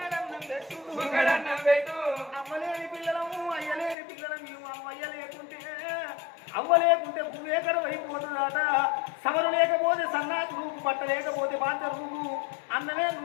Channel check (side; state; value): right; drops out; at 4.0 s